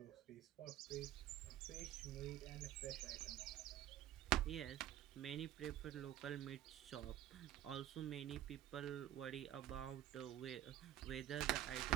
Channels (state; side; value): quieter; left; 12.7 dB